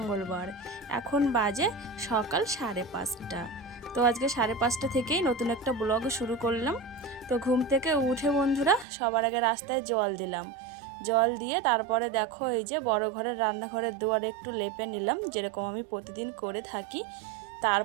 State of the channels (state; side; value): drops out; left; at 8.8 s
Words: এখন বাজে সকাল 5:30। তো আজকে 5:30 থেকেই নতুন একটা ব্লগ শুরু করলাম। তো ঘুম থেকে উঠে বন্ধুরা সবার আগে রাস্তায় জল দিলাম। জল দিয়ে তারপরে দেখো এই যে বড় ঘরের রান্নাঘরের দুয়ারে একটু লেপে নিলাম, যেরকম আমি প্রতিদিন করে থাকি।